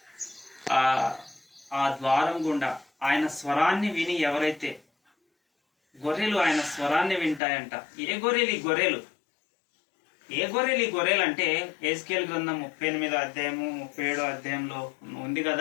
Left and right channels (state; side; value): drops out; right; at 7.4 s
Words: ఆ ద్వారం గుండా ఆయన స్వరాన్ని విని ఎవరైతే గొర్రెలు ఆయన స్వరాన్ని వింటాయంట. ఏ గొర్రెలు ఈ గొర్రెలు? ఏ గొర్రెలు ఈ గొర్రెలు అంటే ఎహెజ్కేలు గ్రంథం 38వ అధ్యాయము 37వ అధ్యాయంలో ఉంది